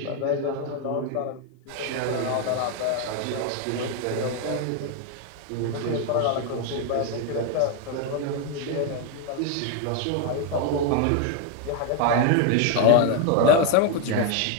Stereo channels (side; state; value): both; different; correlation 0.01